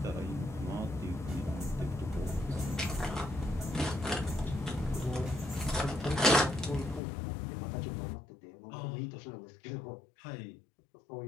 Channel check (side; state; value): right; drops out; at 7.0 s